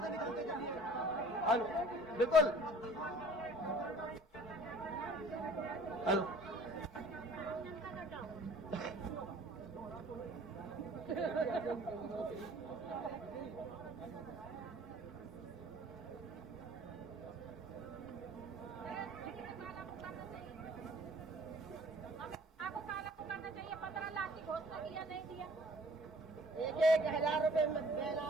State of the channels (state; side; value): normal; both; correlation 0.51